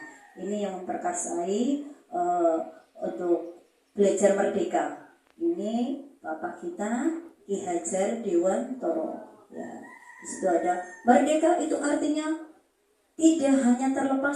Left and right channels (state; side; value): identical; both; correlation 1.00